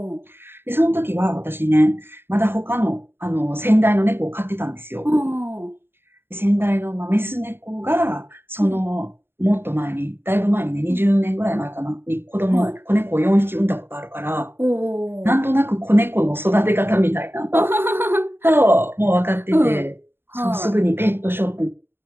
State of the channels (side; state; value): left; late; 0.11 ms